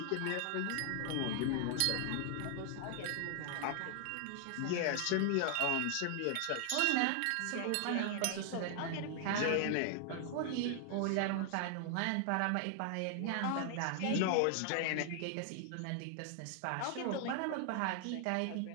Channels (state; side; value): different; both; correlation 0.00